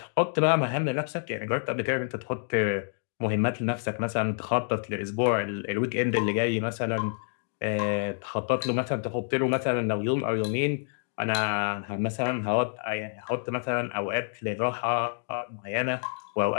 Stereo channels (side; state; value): right; silent; digital silence